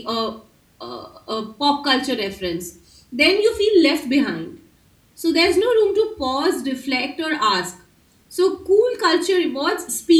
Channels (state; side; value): identical; both; correlation 1.00